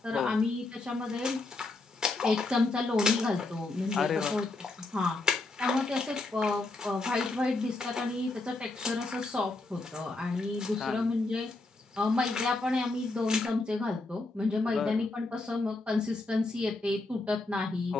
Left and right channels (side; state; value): right; quieter; 3.2 dB